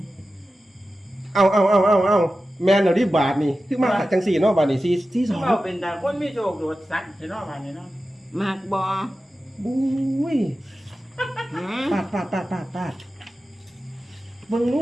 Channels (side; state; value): both; normal; correlation 0.93